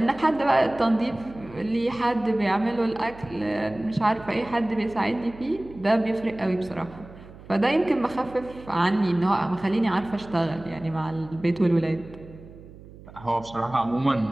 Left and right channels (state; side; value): noise; right; hum, 19 dB below the sound